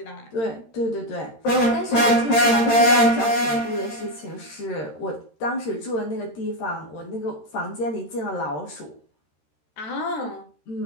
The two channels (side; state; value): right; late; 13 ms